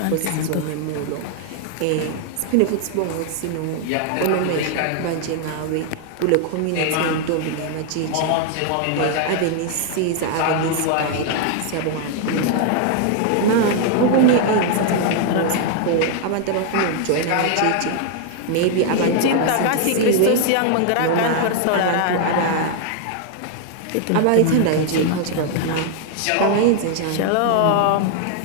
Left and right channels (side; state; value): both; different; correlation 0.00